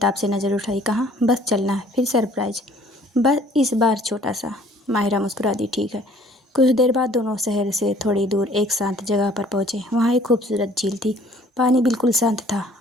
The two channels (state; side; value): normal; both; correlation 0.56